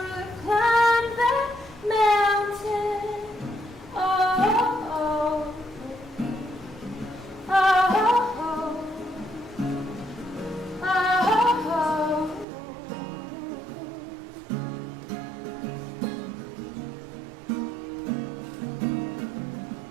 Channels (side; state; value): left; drops out; at 12.5 s